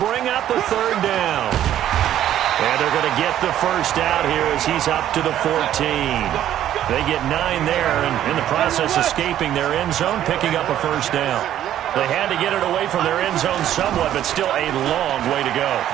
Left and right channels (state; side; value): quieter; left; 11.6 dB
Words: up a 3rd down. And they're going to get the first out here as he's up to the 14. They get 9 there, and in the process escaping their end zone, picking up a first down. They had to get it away from their end zone somewhat, but still a long way to go.